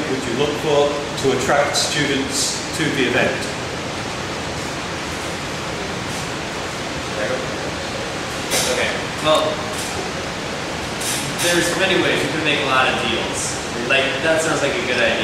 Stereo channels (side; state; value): both; identical; correlation 1.00